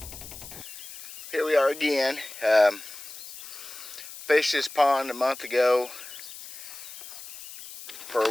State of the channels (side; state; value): left; noise; hiss, 13 dB below the sound